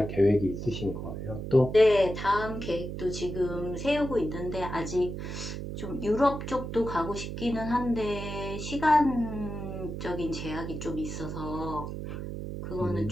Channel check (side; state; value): right; noise; hum, 6 dB below the sound